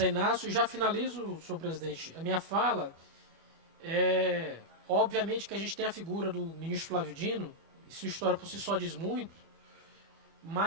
Inácio e já finalizo, senhor presidente, a minha fala. Obviamente que a gente tem a figura do ministro Flávio Dino, e sua história por si só diz muito,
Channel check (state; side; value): late; left; 25 ms